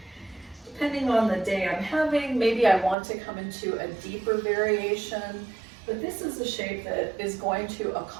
Depending on the day I'm having, maybe I want to come into a deeper variation, but this is a shape that is going to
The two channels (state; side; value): drops out; left; at 3.0 s